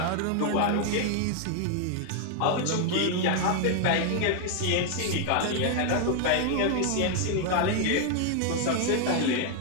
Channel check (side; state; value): both; different; correlation 0.00